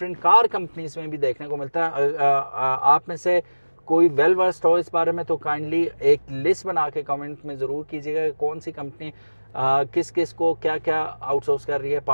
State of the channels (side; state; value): both; inverted; correlation -1.00